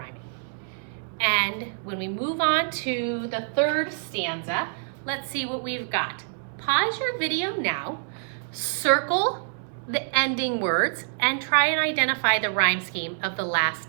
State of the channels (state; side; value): silent; left; 61 dB below the other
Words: And when we move on to the third stanza, let's see what we've got. Pause your video now, circle the ending words and try and identify the rhyme scheme of the